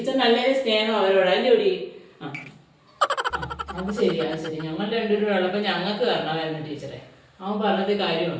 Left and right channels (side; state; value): both; identical; correlation 1.00